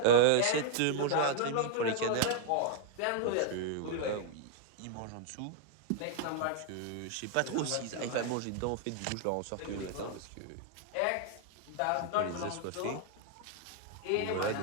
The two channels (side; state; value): both; different; correlation -0.01